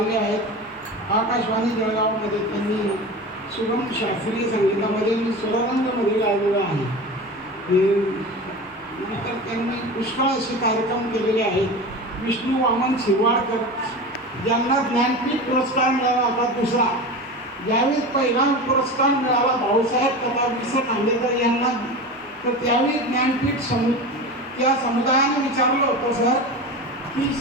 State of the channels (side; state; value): both; normal; correlation 0.29